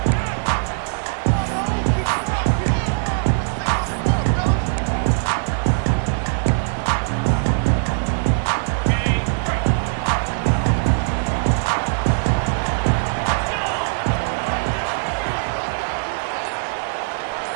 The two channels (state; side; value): silent; left; digital silence